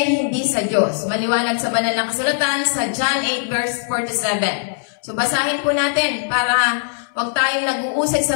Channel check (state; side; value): silent; right; 61 dB below the other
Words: hindi sa Diyos. Maliwanag sa banal na kasulatan sa John 8 verse 47. So basahin po natin para wag tayong nag-uusig sa